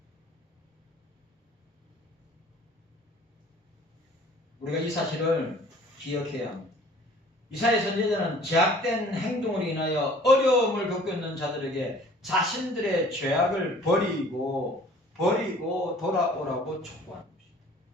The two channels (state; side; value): normal; both; correlation 0.51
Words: 우리가 이 사실을 기억해야 합니다. 이사야 선지자는 죄악된 행동으로 인하여 어려움을 겪고 있는 자들에게 자신들의 죄악을 버리고 돌아오라고 촉구하는 것입니다.